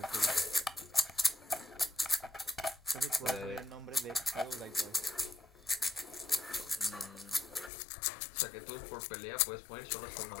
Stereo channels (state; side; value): drops out; right; at 7.7 s